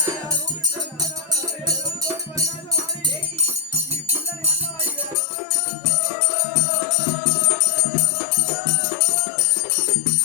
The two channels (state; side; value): drops out; right; at 5.2 s